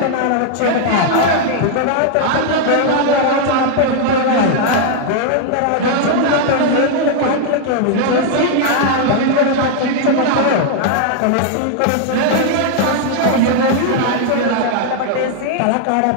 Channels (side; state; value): both; different; correlation 0.00